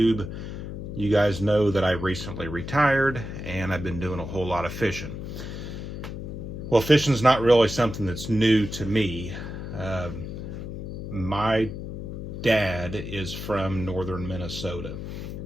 you guys know that I recently retired and I've been doing a whole lot of fishing. Well, fishing's not really something that's new to me. My dad is from northern Minnesota,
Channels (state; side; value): noise; left; hum, 7 dB below the sound